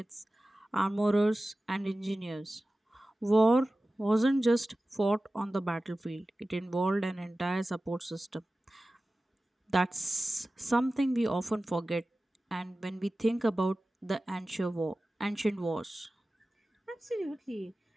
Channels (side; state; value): both; normal; correlation 0.96